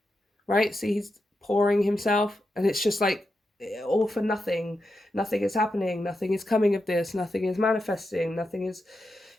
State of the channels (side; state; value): both; normal; correlation 0.87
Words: right? See, he's pouring himself and it's just like all for nothing. Nothing is happening. Nothing is coming of this. Nothing is manifesting. Nothing is